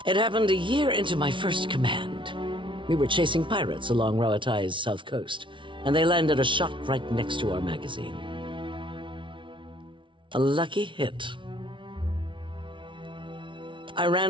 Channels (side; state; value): left; late; 0.24 ms